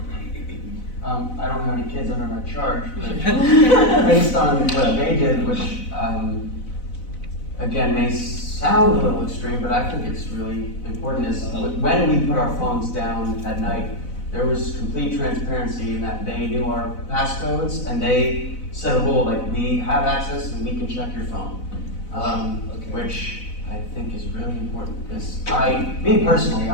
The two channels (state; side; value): late; right; 4.0 ms